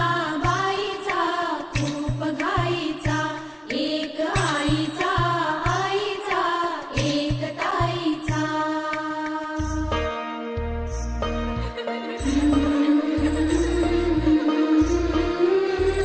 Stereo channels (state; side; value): identical; both; correlation 1.00